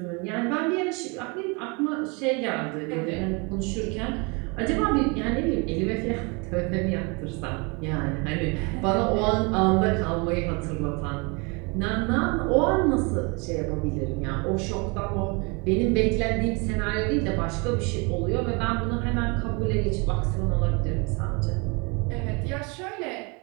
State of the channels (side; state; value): left; quieter; 30.5 dB